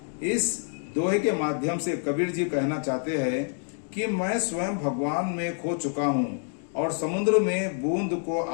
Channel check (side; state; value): right; silent; 58 dB below the other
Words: इस दोहे के माध्यम से कबीर जी कहना चाहते हैं कि मैं स्वयं भगवान में खो चुका हूँ और समुद्र में बूंद को